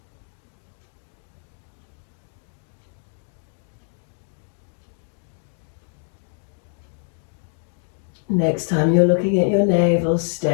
Next time you're looking at your navel,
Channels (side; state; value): right; silent; digital silence